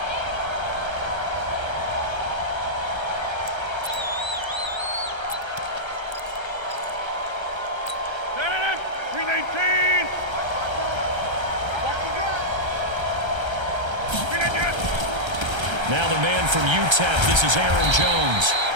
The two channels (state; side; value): late; left; 1.3 ms